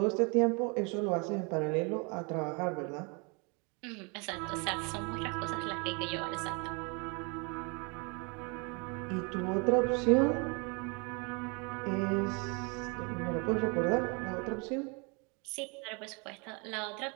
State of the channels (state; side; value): quieter; left; 32.0 dB